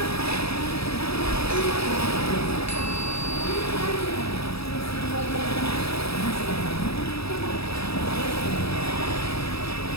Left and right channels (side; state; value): right; late; 0.77 ms